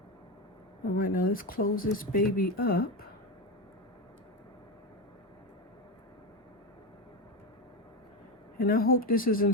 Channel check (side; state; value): both; normal; correlation 0.15